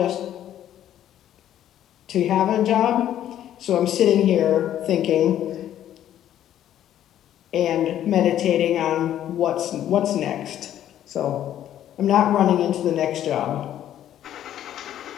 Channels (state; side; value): quieter; right; 11.4 dB